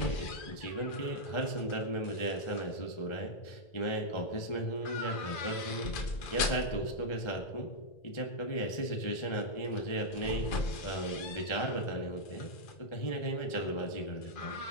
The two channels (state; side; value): late; right; 2.4 ms